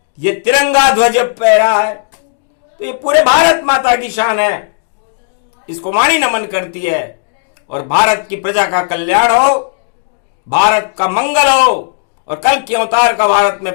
ये तिरंगा ध्वज फहरा है। तो ये पूरे भारत माता की शान है, इसको वाणी नमन करती है। और भारत की प्रजा का कल्याण हो, भारत का मंगल हो, और कल के अवतार का भारत में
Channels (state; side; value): silent; right; digital silence